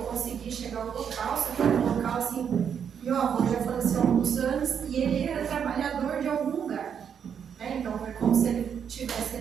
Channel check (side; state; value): left; quieter; 7.7 dB